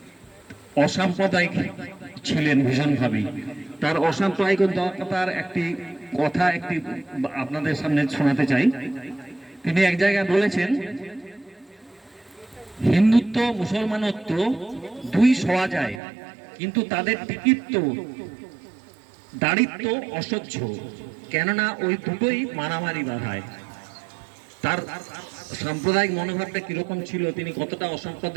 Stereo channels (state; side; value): drops out; left; at 16.0 s